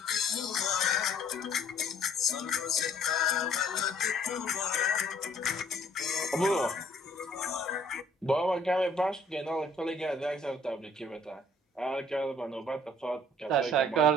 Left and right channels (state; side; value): normal; both; correlation 0.58